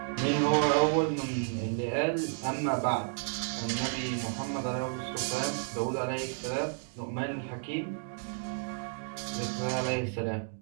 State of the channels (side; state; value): left; silent; digital silence